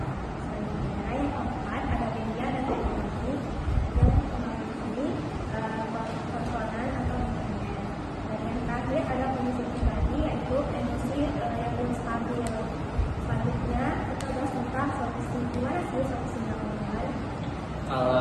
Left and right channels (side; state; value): both; identical; correlation 1.00